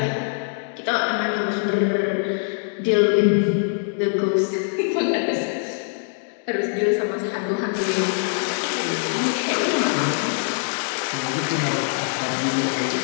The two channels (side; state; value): right; silent; 63 dB below the other